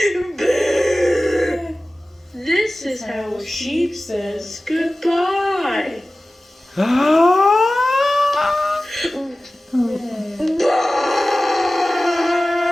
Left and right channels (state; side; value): normal; both; correlation 0.96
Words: Baa. This is how a sheep says goodbye. Baa.